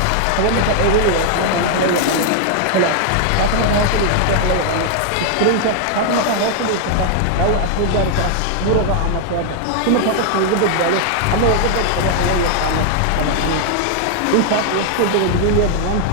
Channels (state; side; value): different; both; correlation 0.00